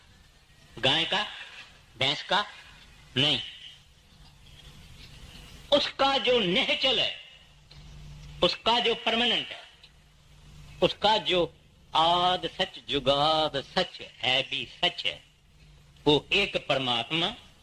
गाय का, भैंस का? नहीं, उसका जो नेचुरल है, उसका जो परमानेंट है, उसका जो आद सच जुगाद सच है भी सच है, वो एक परमात्मा,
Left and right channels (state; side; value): identical; both; correlation 1.00